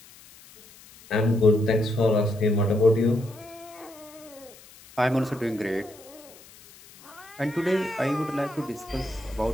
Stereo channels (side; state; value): left; noise; hiss, 22 dB below the sound